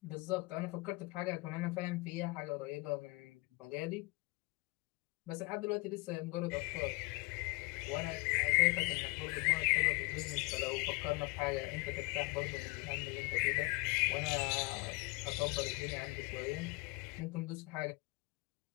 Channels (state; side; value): quieter; right; 25.6 dB